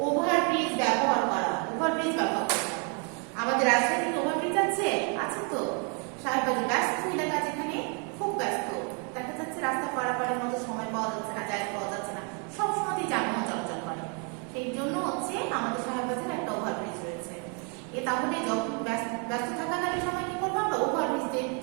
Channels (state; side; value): quieter; left; 37.7 dB